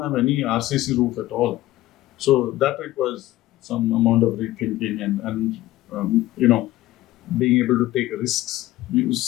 have any RCC roof at all. So that requires some amount of rethinking and being able to take risks.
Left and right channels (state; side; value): quieter; right; 16.0 dB